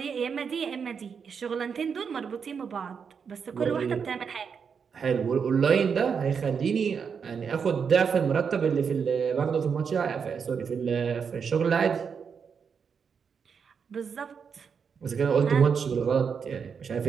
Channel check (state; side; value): quieter; left; 6.4 dB